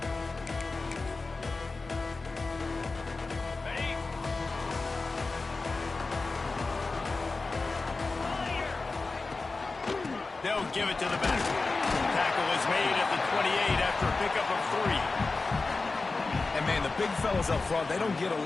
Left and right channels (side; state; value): right; quieter; 3.8 dB